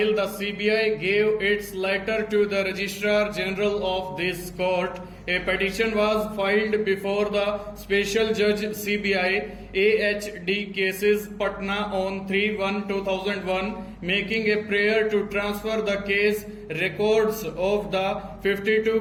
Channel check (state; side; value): identical; both; correlation 1.00